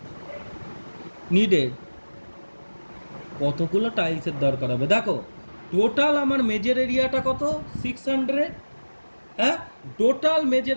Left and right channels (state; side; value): inverted; both; correlation -1.00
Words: নিডেড, কতগুলো টাইলসের দরকার হবে। দেখো টোটাল আমার মেজর এরিয়াটা কত, 600, হ্যাঁ টোটাল মেজর